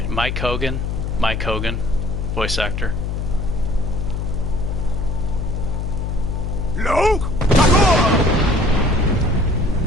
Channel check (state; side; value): noise; left; hum, 2 dB below the sound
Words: Hogan. Mike Hogan, voice actor.